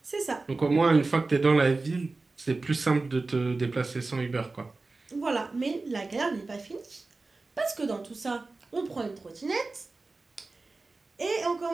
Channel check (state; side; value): quieter; left; 3.5 dB